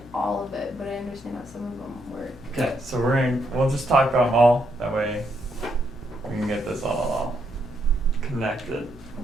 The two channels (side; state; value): both; normal; correlation 0.76